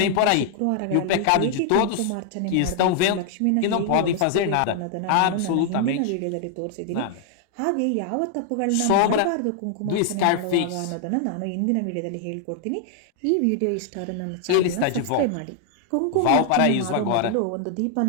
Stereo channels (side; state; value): both; different; correlation 0.00